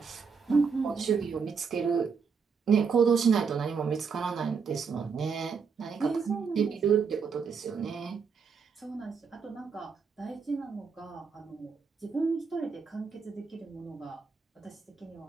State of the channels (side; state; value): left; quieter; 5.7 dB